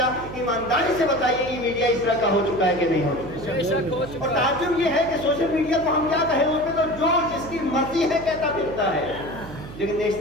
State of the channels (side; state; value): right; noise; hum, 13 dB below the sound